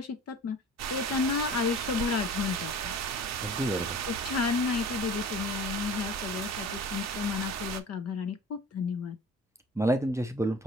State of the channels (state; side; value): normal; both; correlation 0.41